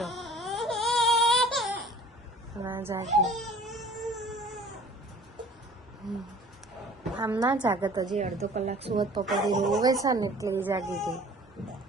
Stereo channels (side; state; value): both; normal; correlation 0.48